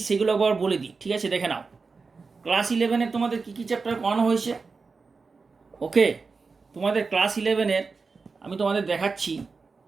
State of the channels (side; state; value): left; quieter; 4.5 dB